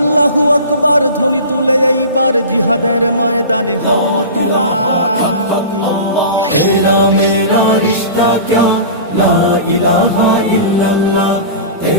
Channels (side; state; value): both; inverted; correlation -0.34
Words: আকবার ধ্বনি তুলে এইবার জিহাদের ময়দানে হও তোলা। तेरा मेरा रिश्ता क्या ला इलाहा इल्लल्लाह,